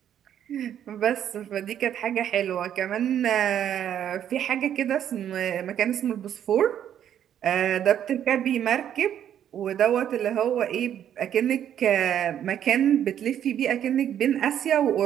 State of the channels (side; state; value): left; quieter; 9.9 dB